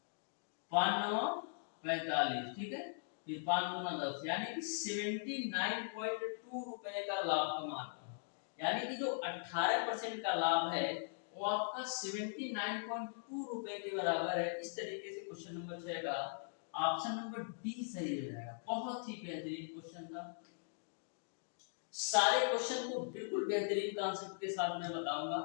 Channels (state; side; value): silent; right; digital silence